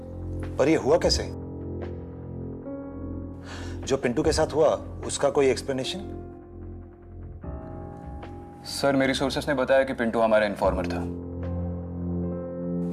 पर ये हुआ कैसे? जो पिंटू के साथ हुआ उसका कोई एक्सप्लेनेशन? सर, मेरी सोर्सेस ने बताया कि पिंटू हमारा इन्फॉर्मर था।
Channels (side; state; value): both; identical; correlation 1.00